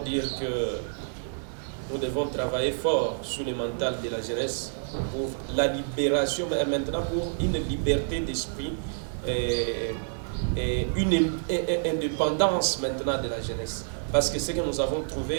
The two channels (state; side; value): silent; left; digital silence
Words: que nous devons travailler fort sur le mental de la jeunesse pour la libération, mais maintenant pour une liberté d'esprit et une indépendance maintenant de la jeunesse. Parce que ce que nous avons